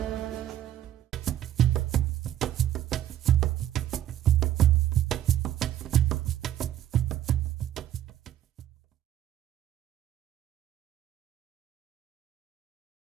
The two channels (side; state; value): left; quieter; 11.8 dB